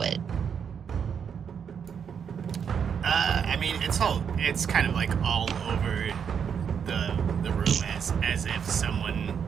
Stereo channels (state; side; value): quieter; left; 7.3 dB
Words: it? I mean, it's kind of like all over the room as if someone